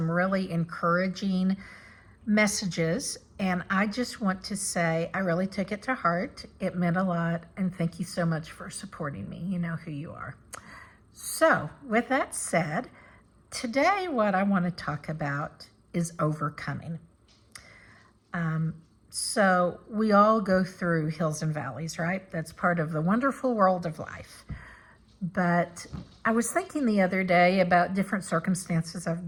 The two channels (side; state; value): both; identical; correlation 1.00